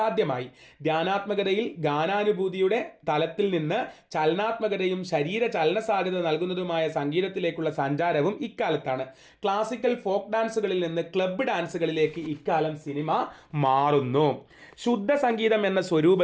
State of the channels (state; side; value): identical; both; correlation 1.00